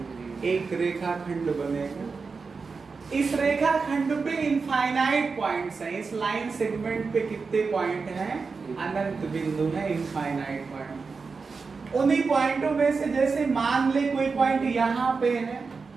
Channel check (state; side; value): quieter; left; 4.7 dB